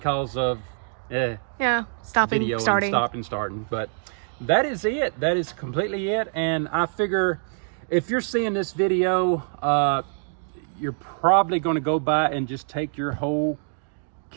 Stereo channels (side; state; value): left; silent; digital silence